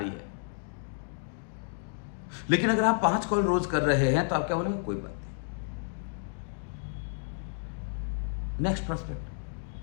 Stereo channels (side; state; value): right; silent; digital silence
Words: है। लेकिन अगर आप 5 कॉल रोज कर रहे हैं तो आप क्या बोलेंगे? कोई बात नहीं, नेक्स्ट